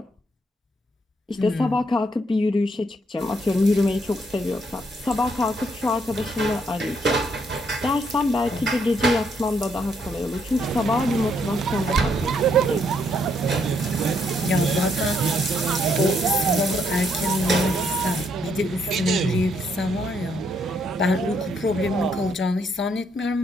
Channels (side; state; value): both; normal; correlation 0.73